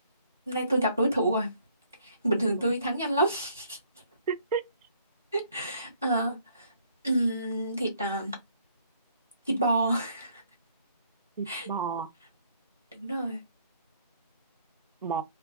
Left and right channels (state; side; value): inverted; both; correlation -0.65